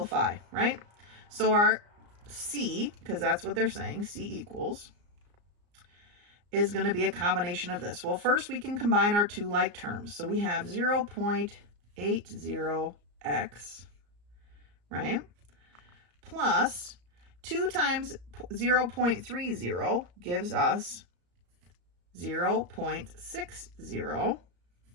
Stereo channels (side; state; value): left; late; 34 ms